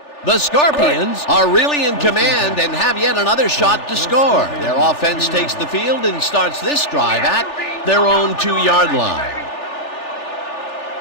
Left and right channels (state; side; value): late; right; 3.4 ms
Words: The Scorpions are really in command and have yet another shot to score. Their offense takes the field and starts this drive at their own 2-yard line.